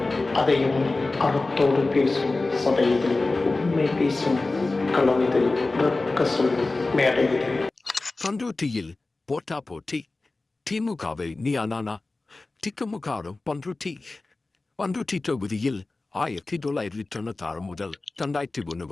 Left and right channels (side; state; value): right; quieter; 3.3 dB